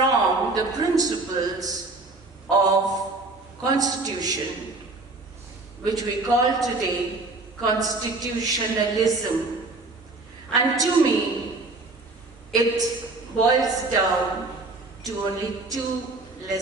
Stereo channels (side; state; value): left; quieter; 3.3 dB